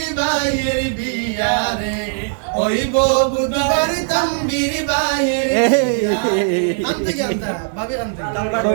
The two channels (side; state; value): left; silent; digital silence